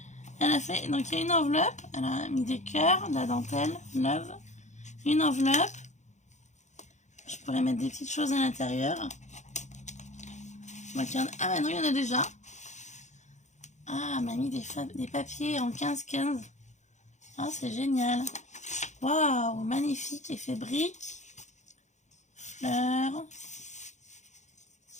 elle a fait, donc il y a une enveloppe. Elle a mis des cœurs, de la dentelle, love. Une enveloppe. Je pourrais mettre des petites choses à l'intérieur. Ah bah non, il y en a déjà. Ah, elle m'a mis des papiers en 15-15. Ah, c'est génial. Waouh, magnifique, effet brique. Fleurs.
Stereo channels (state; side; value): late; right; 0.34 ms